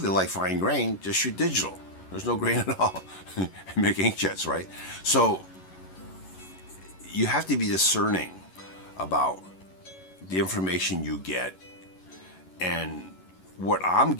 like fine grain, just shoot digital. There's no grain at all. Make inkjets, right? So you have to be discerning about the information you get, and what I'm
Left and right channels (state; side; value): late; right; 11 ms